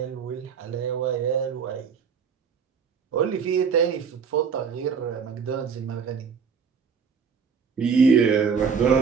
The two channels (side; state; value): left; quieter; 6.2 dB